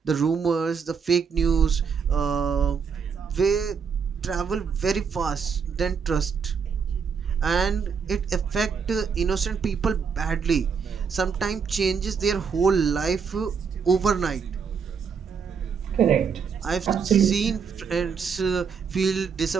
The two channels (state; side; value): quieter; left; 6.2 dB